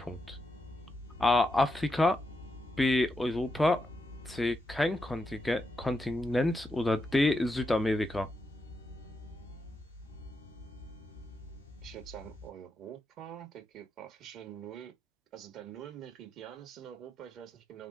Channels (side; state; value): both; normal; correlation 0.84